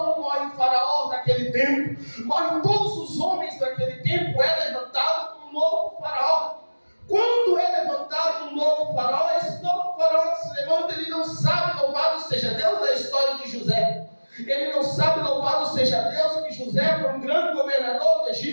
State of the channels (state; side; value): inverted; both; correlation -1.00